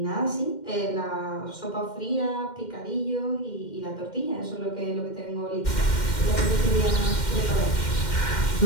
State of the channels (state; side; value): late; right; 2.1 ms